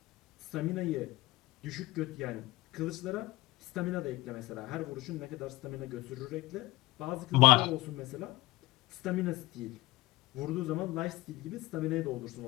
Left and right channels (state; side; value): quieter; right; 19.7 dB